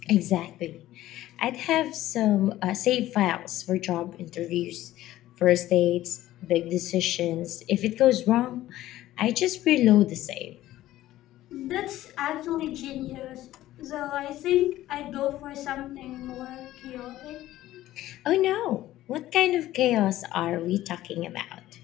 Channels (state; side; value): quieter; right; 14.8 dB